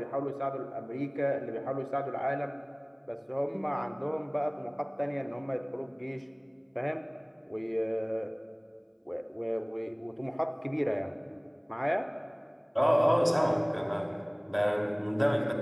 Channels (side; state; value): both; identical; correlation 1.00